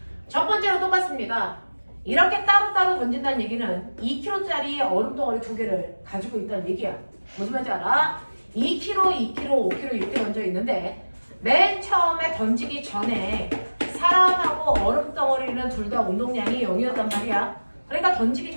첫 번째로 똑같습니다. 이렇게 따로따로 던진다는 얘기는 2kg짜리 얼음 덩어리 두 개를 가지고 있다는 얘기야. 무슨 말인지 알아? 2kg, 2kg, 5kg 이렇게 던져 있는데 맨 처음에 던지기 전에 사람하고 얼음 덩어리는 둘 다 운동량이 0이었단 말이야. 그러니까 던지기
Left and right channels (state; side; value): inverted; both; correlation -1.00